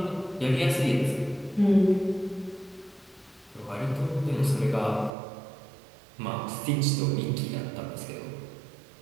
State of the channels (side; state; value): left; drops out; at 5.1 s